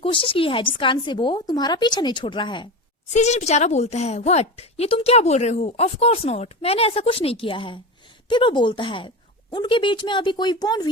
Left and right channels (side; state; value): both; normal; correlation 0.23